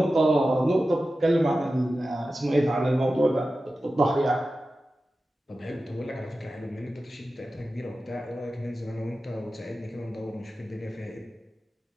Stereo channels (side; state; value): both; normal; correlation 0.94